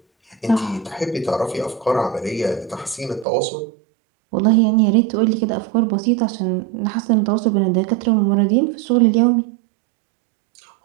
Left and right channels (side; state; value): left; drops out; at 3.2 s